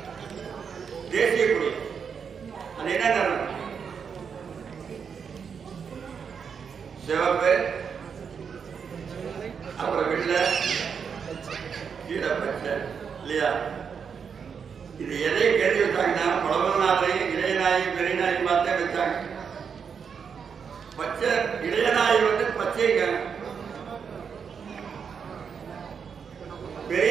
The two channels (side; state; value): left; quieter; 6.6 dB